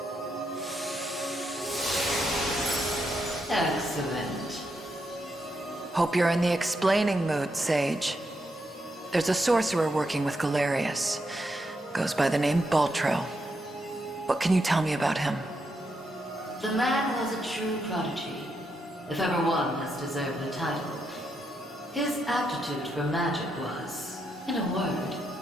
Excellent. Hope you're in the explaining mood, Sage. There's a sorcerer working with Garius. Goes by the name Baltro. What can you tell me about him? The man was a true prodigy, if ever one has deserved the title. His aptitude for magic was, in a word,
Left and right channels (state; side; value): normal; both; correlation 0.81